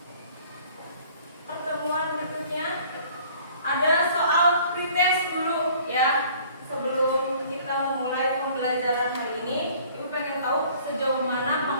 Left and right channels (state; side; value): inverted; both; correlation -0.54